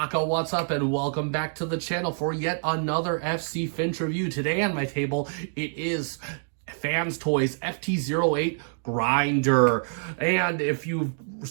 what's up, and welcome back to the channel for yet another FC Finch review. Today on my table, it is Fans Toys FT08 Grinder. And if you've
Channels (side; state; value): left; silent; digital silence